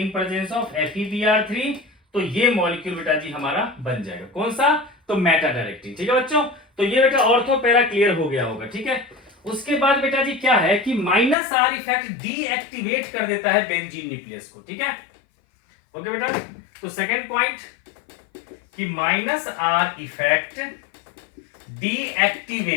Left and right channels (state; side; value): drops out; right; at 11.4 s